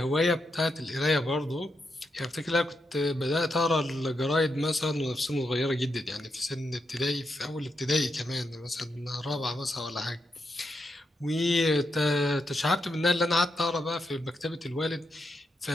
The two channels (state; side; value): normal; both; correlation 0.83